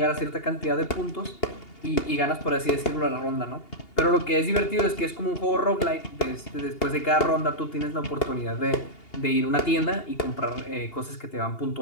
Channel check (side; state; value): right; late; 2.8 ms